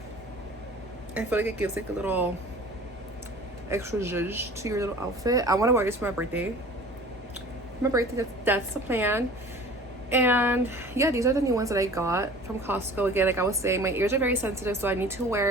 I feel like it gives like a little extra zhuzh to your little outfit. I want to wear this for my birthday. My birthday, that's the plan. And yeah, these are the new ones that I got from Costco. Again, like I was saying, my ears are very sensitive, so I need to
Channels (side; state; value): both; normal; correlation 0.44